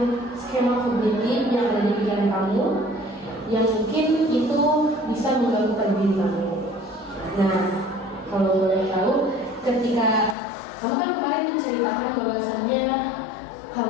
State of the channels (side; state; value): right; drops out; at 10.4 s